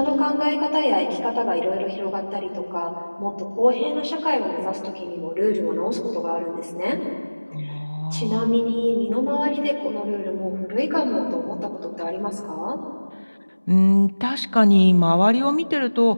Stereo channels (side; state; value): both; inverted; correlation -1.00